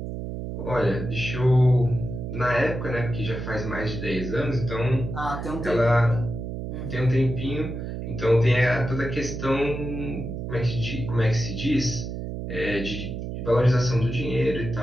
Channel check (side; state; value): right; noise; hum, 6 dB below the sound